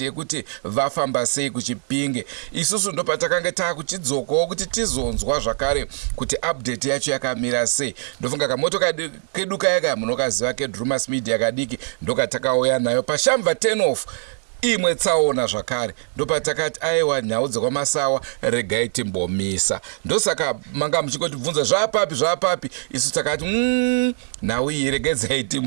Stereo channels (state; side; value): silent; left; 64 dB below the other